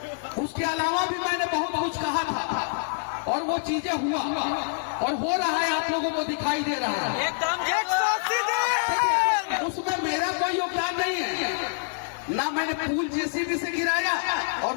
उसके अलावा भी मैंने बहुत कुछ कहा था और वो चीजें हुआ और हो रहा है, आप लोगों को दिखाई दे रहा है। उसमें मेरा कोई योगदान नहीं है, ना मैंने पुल जेसीबी से गिराया और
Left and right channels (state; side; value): silent; right; digital silence